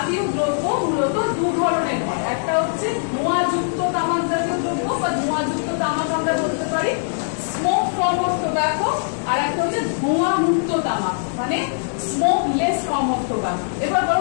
দ্রব্য মূলত দু ধরনের হয়। একটা হচ্ছে ধোঁয়াযুক্ত তামাক জাতীয় দ্রব্য বা ধোঁয়াযুক্ত তামাক আমরা বলতে পারি স্মোক ফর্ম অফ টোব্যাকো, আর একটা হচ্ছে ধোঁয়া মুক্ত তামাক মানে smoke less form of tobacco. এবার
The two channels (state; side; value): silent; right; digital silence